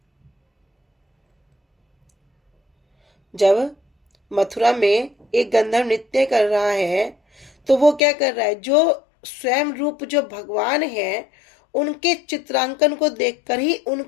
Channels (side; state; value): right; drops out; at 8.0 s